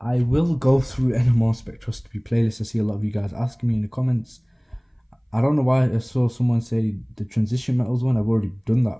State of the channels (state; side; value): identical; both; correlation 1.00